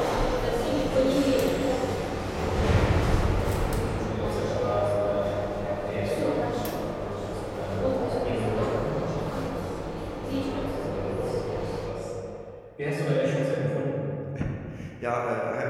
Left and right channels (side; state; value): both; identical; correlation 1.00